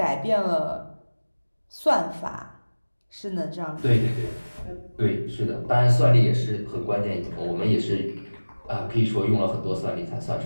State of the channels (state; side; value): inverted; both; correlation -1.00